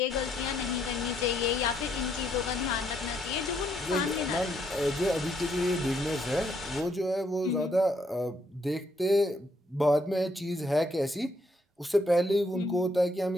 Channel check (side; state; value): both; normal; correlation 0.72